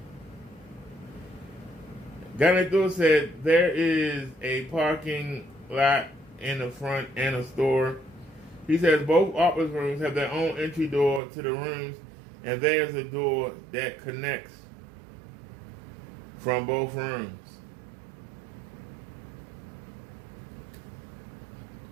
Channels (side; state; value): left; drops out; at 11.2 s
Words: Ganador said there is a parking lot in the front and a store. He says both office rooms have their own entry door to the rooms, and there's a door that connects from both rooms.